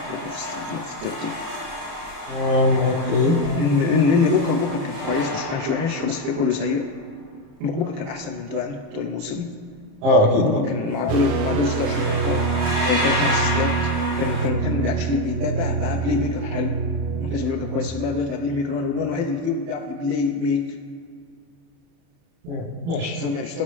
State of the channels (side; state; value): left; late; 36 ms